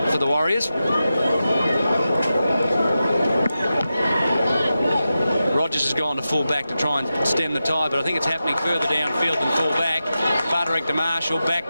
for the Warriors. Rogers has gone to full back to try and stem the tide, but I think it's happening further downfield than full back. Butterick to Marshall, back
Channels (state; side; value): inverted; both; correlation -0.91